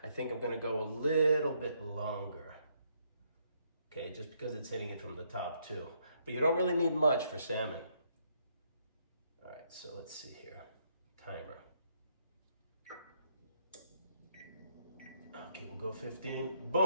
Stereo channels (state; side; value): inverted; both; correlation -0.72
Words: I think I'm gonna go a little bit longer. Okay, just because it's hitting it from the top too. But you don't really need much for salmon. All right, so let's see here. Timer. Okay, we'll go 15,